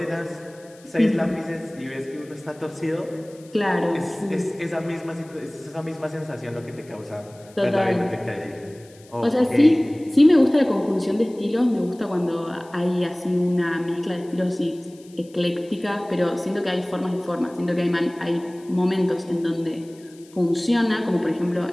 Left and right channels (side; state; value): left; noise; hiss, 26 dB below the sound